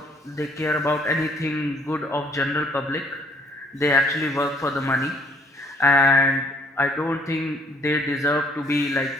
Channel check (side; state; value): both; normal; correlation 0.62